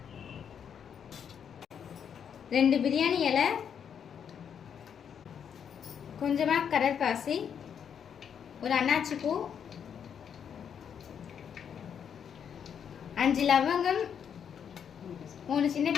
ரெண்டு பிரியாணி இலை, கொஞ்சமாக கடற்பாசி, ஒரு அன்னாச்சி பூ, 5 லவங்கம், 3 சின்ன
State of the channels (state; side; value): quieter; right; 7.9 dB